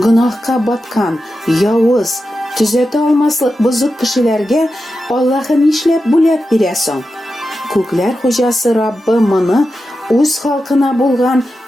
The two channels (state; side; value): normal; both; correlation 0.90